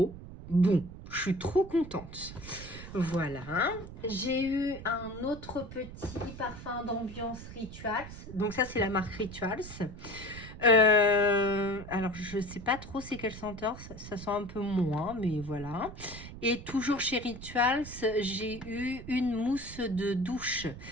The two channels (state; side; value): noise; right; rumble, 13 dB below the sound